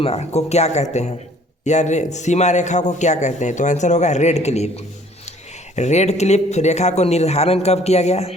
को क्या कहते हैं, या सीमा रेखा को क्या कहते हैं? तो आंसर होगा रेड क्लिफ। रेड क्लिफ रेखा को निर्धारण कब किया गया?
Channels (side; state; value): both; normal; correlation 0.56